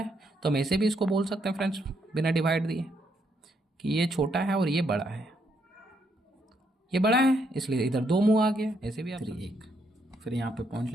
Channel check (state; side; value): normal; both; correlation 0.75